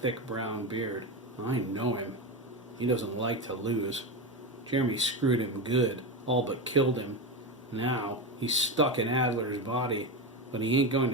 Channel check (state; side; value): normal; both; correlation 0.16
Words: brown beard. "I know him. He doesn't like to lose. Jeremy screwed him good, all but killed him. Now he's stuck in Adler's body, but he ain't going